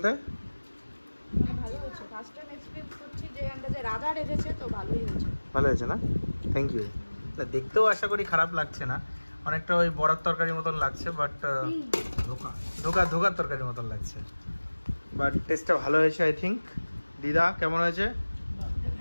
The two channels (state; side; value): inverted; both; correlation -1.00